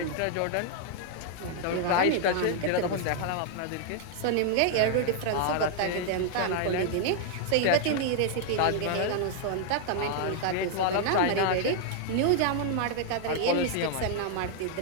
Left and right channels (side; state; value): both; different; correlation 0.00